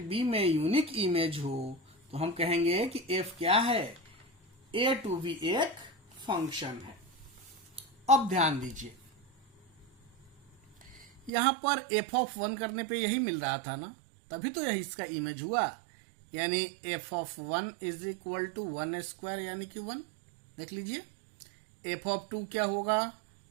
B में यूनिक इमेज हो तो हम कहेंगे कि F क्या है, A to B एक फंक्शन है। अब ध्यान दीजिए यहां पर f ऑफ 1 करने पे यही मिल रहा था ना, तभी तो यही इसका इमेज हुआ, यानी f of 1 is equal to 1 square यानी कि 1। देख लीजिए f ऑफ 2 क्या होगा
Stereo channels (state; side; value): drops out; left; at 11.3 s